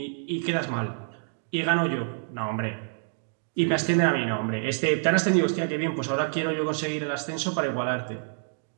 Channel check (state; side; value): silent; left; digital silence